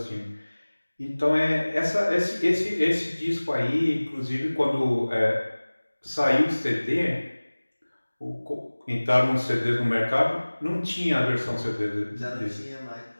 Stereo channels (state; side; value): inverted; both; correlation -1.00